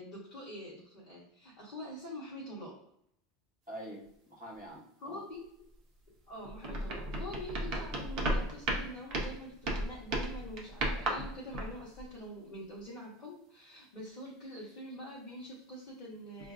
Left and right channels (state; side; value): normal; both; correlation 0.39